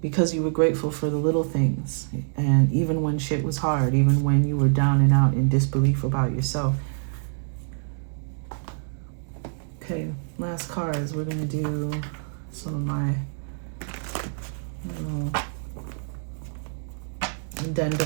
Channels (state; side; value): silent; left; digital silence